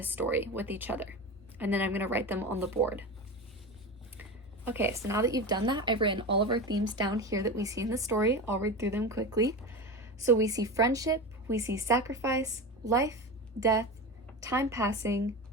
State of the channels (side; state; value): both; normal; correlation 0.25